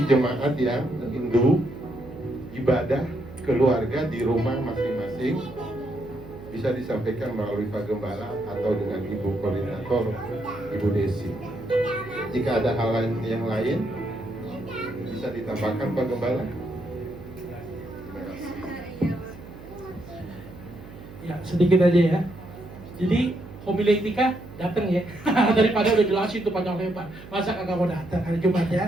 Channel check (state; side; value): noise; right; hum, 16 dB below the sound